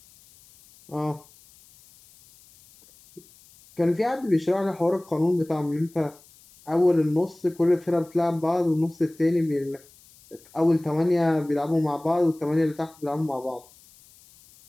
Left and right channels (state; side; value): noise; left; hiss, 26 dB below the sound